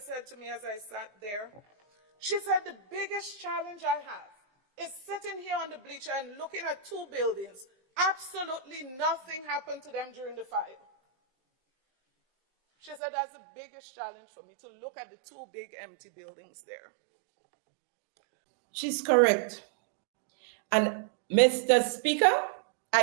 to me as I sat there? She said, the biggest challenge I have is sitting here on the bleacher and looking at two buildings. Absolutely nothing happened to them during the fire. She said, that's the biggest challenge for me, to look at the two big empty buildings there. She's correct. And Mr. Speaker,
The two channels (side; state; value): left; drops out; at 13.0 s